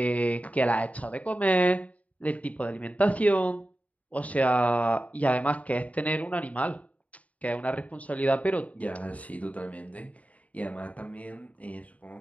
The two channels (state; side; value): late; right; 0.069 ms